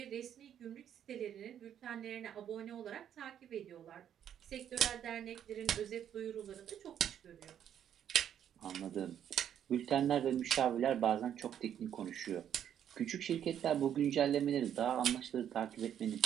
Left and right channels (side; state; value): left; quieter; 9.6 dB